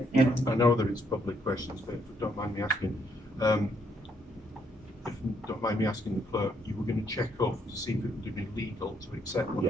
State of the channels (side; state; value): both; normal; correlation 0.72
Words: Yeah. I know that it's public questions, but if you don't mind me asking, if you don't mind me asking the clerk, you were going to check up to see if it would be legal to accept one